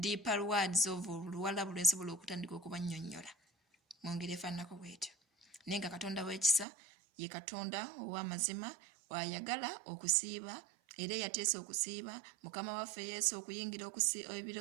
deeper words of Luwarabu lwe nsobola okutandika okubannyonnyola mu ngeri efaananako bwetyo naye nga Katonda w'ekisa ye Katonda ow'amazima wayagala okusiiba era yateesa okusiiba mukama waffe Yesu okuyingira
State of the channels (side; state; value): left; drops out; at 6.7 s